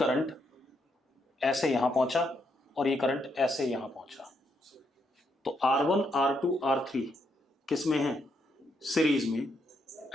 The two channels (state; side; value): normal; both; correlation 0.78